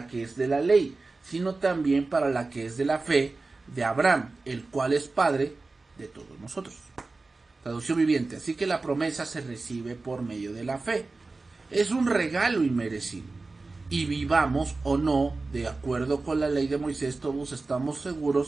que es de la ley, sino también para la que es de la fe de Abraham, el cual es padre de todos nosotros. Traducción viviente. Así que la promesa se recibe por medio de la fe. Es un regalo inmerecido. Y vivamos o no, de acuerdo con la ley de Moisés, todos estamos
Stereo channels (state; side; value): quieter; left; 3.6 dB